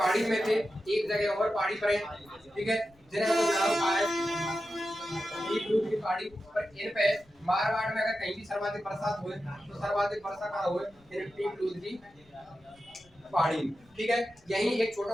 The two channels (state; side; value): noise; left; rumble, 30 dB below the sound